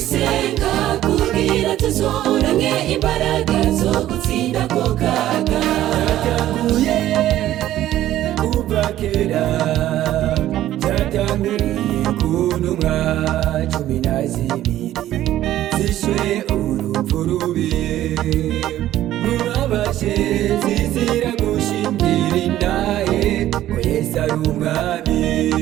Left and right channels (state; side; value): quieter; left; 13.4 dB